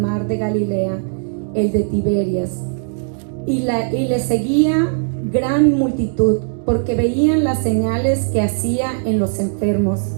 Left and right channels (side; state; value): left; silent; digital silence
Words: de Galilea, el de Tiberias, y le seguía gran multitud, porque veían las señales que hacía en los enfermos.